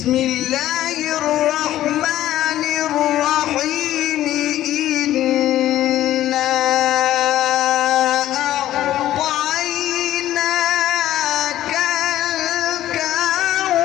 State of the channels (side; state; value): right; quieter; 13.4 dB